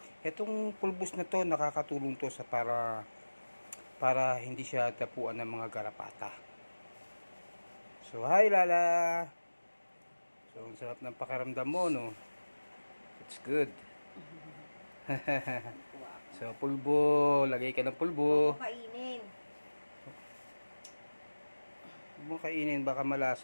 Itong pulbus na to, nakakatulong to sa para hindi siya tapuan ng mga garapata. So hi Lala! So ang sarap ng pakaramdam mo, no? It's good. So pulbo, lagay ka ng pulbo. Kainin. Huwag mo kainin, baka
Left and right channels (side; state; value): both; inverted; correlation -1.00